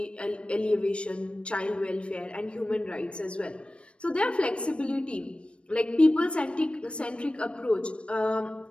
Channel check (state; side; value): late; right; 0.059 ms